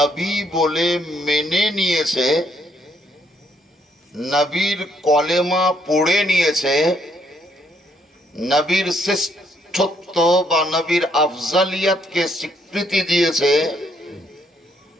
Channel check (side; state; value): both; normal; correlation 0.71